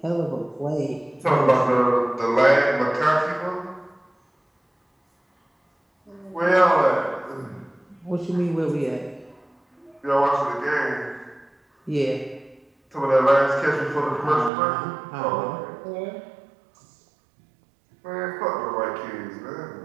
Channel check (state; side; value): drops out; left; at 14.5 s